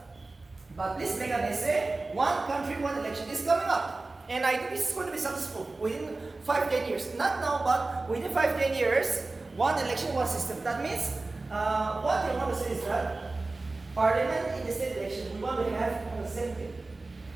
But please make an essay, one country, one election is coming up. And I think this is going to be successful within 5-10 years. Not now, but within 5-10 years, one election, one system. That means, what you want to say is that Parliament in the state election, we want to have on the same day.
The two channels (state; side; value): quieter; left; 3.3 dB